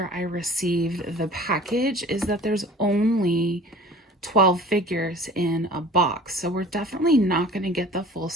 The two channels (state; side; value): normal; both; correlation 0.45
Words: I received the package is that there's only 12 figures in a box. So we're definitely not going to get the full